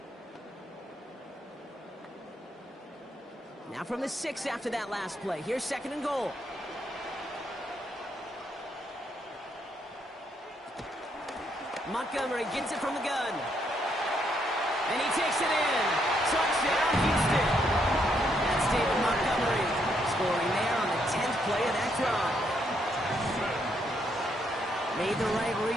Now from the 6 after that last play. Here's 2nd and goal. Montgomery gets it from the gun. And he takes it in. Touchdown, Houston. That's David Montgomery scoring there on the 10th play of that drive. Made the right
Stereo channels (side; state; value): both; normal; correlation 0.75